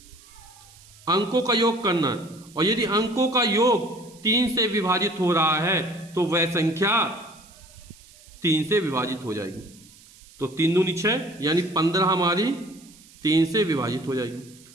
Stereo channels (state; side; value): noise; right; hiss, 24 dB below the sound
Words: अंकों का योग करना है, और यदि अंकों का योग 3 से विभाजित हो रहा है तो वह संख्या 3 से विभाजित हो जाएगी। तो 3 दूनी 6, यानी 15 हमारी 3 से विभाजित हो जाएगी।